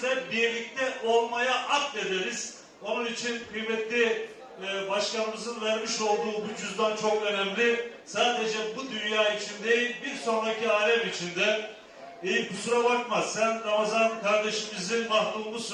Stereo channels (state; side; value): identical; both; correlation 1.00